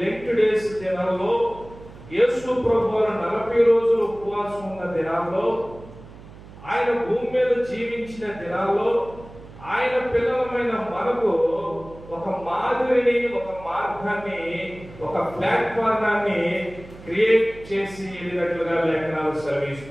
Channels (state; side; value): noise; right; hum, 18 dB below the sound